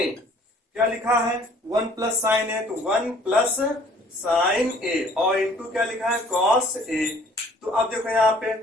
क्या लिखा है 1 प्लस साइन ए तो 1 प्लस साइन ए और इंटू क्या लिखा है कॉस ए। तो अब देखो यहाँ पे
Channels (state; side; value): normal; both; correlation 0.56